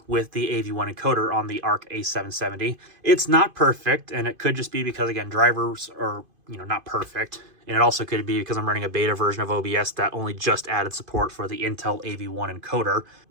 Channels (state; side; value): late; left; 2.5 ms